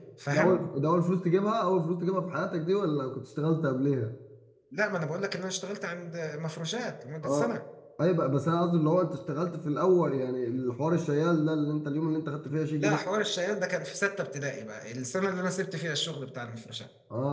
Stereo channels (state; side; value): identical; both; correlation 1.00